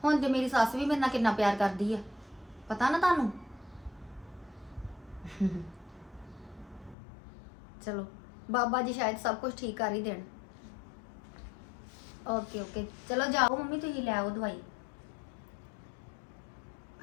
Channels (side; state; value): right; drops out; at 7.0 s